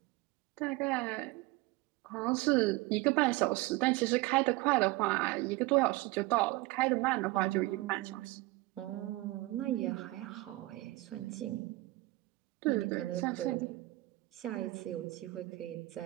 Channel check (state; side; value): quieter; left; 20.5 dB